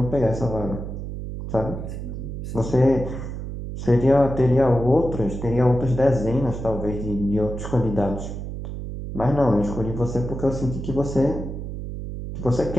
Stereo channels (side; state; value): right; noise; hum, 7 dB below the sound